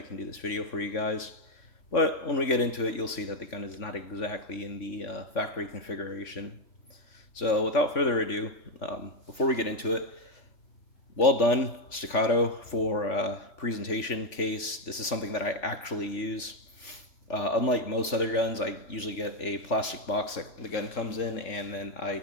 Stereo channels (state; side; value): late; right; 3.5 ms